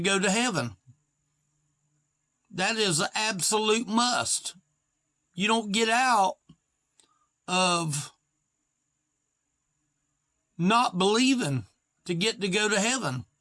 go to heaven. That is an absolute must. You don't get out of not believing to get to go to heaven.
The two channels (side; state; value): both; identical; correlation 1.00